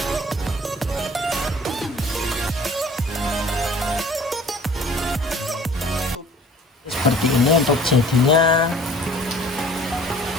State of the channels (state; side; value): normal; both; correlation 0.50